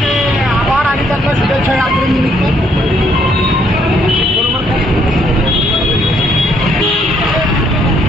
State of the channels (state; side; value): normal; both; correlation 0.69